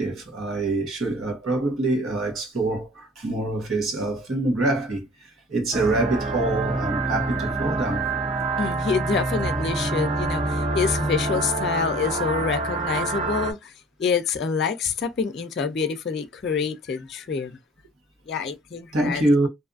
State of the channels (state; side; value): normal; both; correlation 0.48